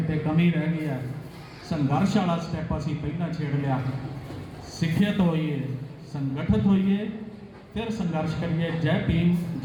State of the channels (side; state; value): both; identical; correlation 1.00